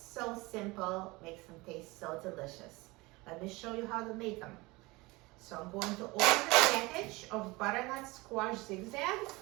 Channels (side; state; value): left; quieter; 23.0 dB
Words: so simple, makes them taste so delicious. Let me show you how to make them. So I'm going to open the package of butternut squash zigzags,